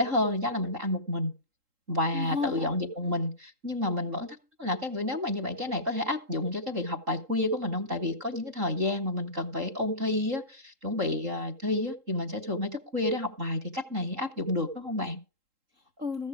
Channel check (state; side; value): late; left; 3.8 ms